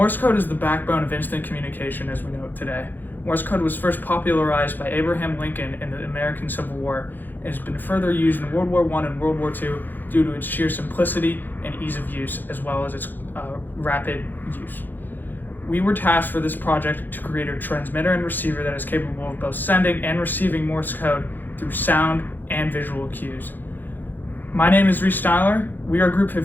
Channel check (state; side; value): late; right; 0.089 ms